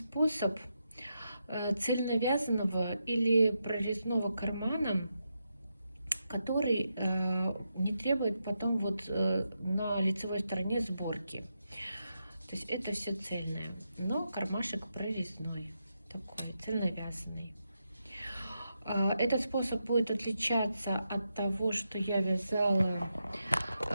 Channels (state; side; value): inverted; both; correlation -0.85